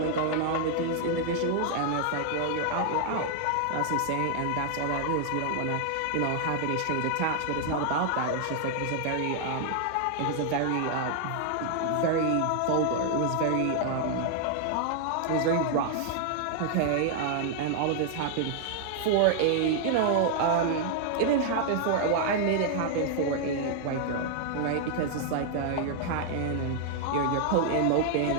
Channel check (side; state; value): both; different; correlation 0.00